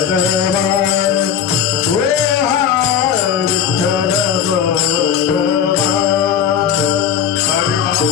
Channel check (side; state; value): right; quieter; 8.5 dB